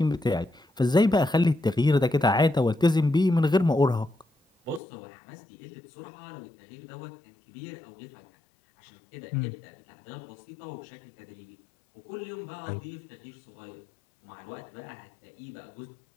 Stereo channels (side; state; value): right; drops out; at 4.8 s